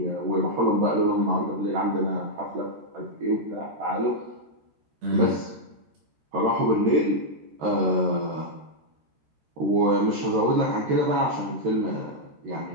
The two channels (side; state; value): left; late; 13 ms